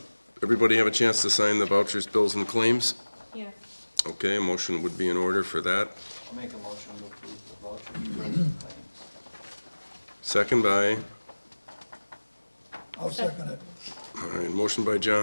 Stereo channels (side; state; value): both; inverted; correlation -1.00